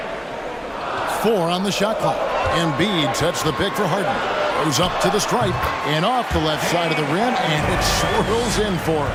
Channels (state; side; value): identical; both; correlation 1.00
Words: 4 on the shot clock. Embiid sets the pick for Harden. Goes up to the stripe and off the left side of the rim, and it swirls in for